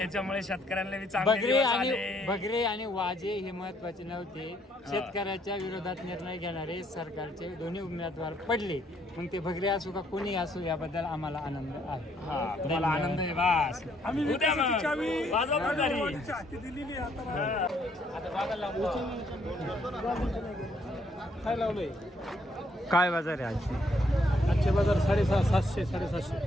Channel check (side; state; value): both; normal; correlation 0.69